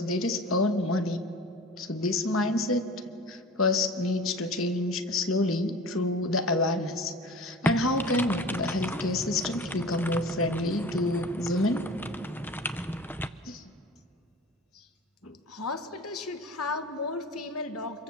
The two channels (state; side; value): normal; both; correlation 0.38